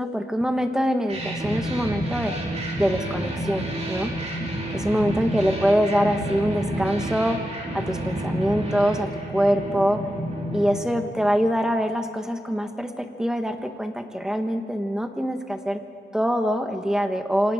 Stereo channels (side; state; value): both; normal; correlation 0.89